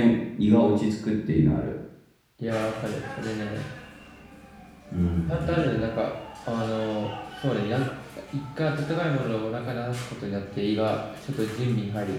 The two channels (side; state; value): both; identical; correlation 1.00